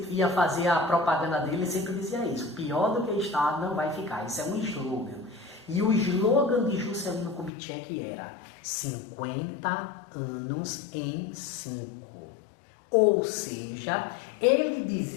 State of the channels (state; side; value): drops out; right; at 7.5 s